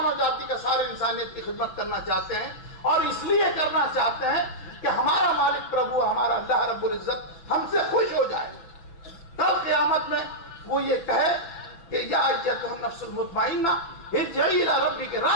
جاتی کا، ساری انسانیت کی خدمت کرنا چاہتے ہیں، اور اس لیے کرنا چاہتے ہیں کہ ہمارا مالک پربھو، ہمارا اللہ رب العزت ہم سے خوش ہو جائے۔ کل قیامت میں وہ یہ کہے کہ یا ایتھا النفس المطمئنہ ارجعی الی ربک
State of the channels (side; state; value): right; late; 6.0 ms